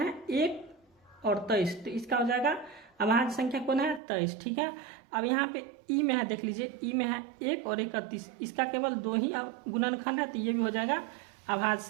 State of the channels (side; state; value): left; drops out; at 4.0 s